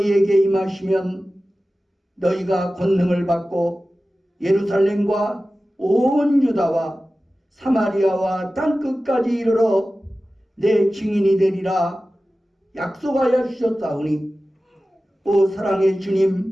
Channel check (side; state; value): both; normal; correlation 0.95